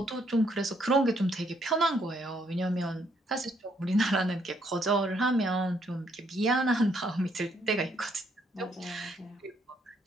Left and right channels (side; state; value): both; normal; correlation 0.71